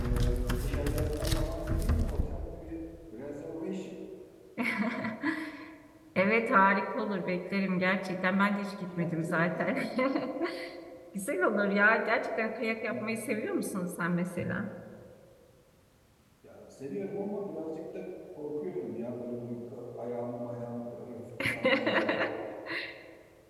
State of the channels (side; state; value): both; identical; correlation 1.00